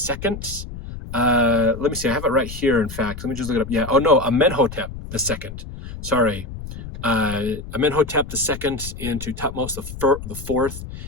Let me see, I have it right here, in fact. Let me just look it up. Yeah, oh no, Amenhotep the second. Sorry. Amenhotep the second into Thutmose the fourth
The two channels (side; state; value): left; noise; rumble, 10 dB below the sound